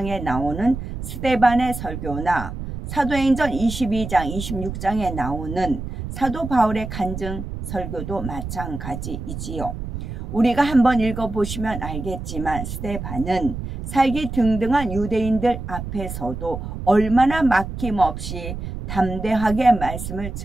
나오는 스데반의 설교나 사도행전 22장, 26장에 나오는 사도 바울의 간증 설교도 마찬가지이지요. 우리가 한번 읽어보시면 알겠지만 스데반은 살기 등등한 유대인들 앞에서도 얼마나 막힘없이 담대하게 말씀을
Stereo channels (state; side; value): noise; right; rumble, 7 dB below the sound